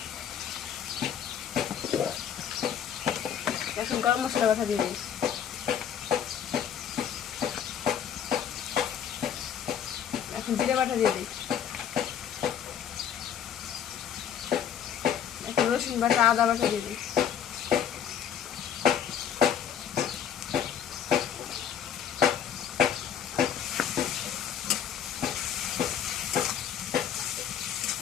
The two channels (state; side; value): quieter; right; 8.9 dB